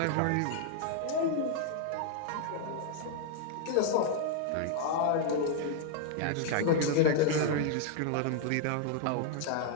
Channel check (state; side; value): different; both; correlation 0.00